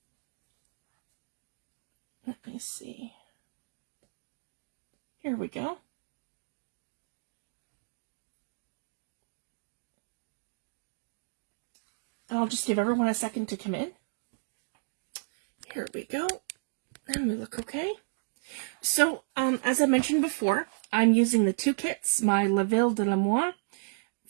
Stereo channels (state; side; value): silent; left; digital silence